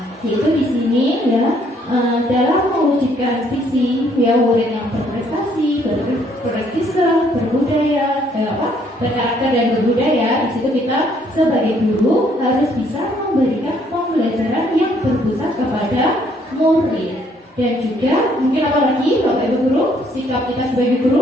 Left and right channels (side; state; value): both; normal; correlation 0.66